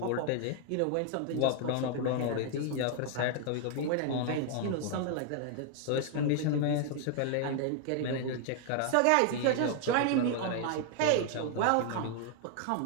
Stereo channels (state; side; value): different; both; correlation 0.00